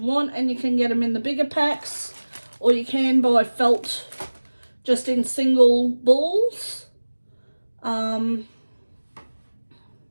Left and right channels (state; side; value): inverted; both; correlation -1.00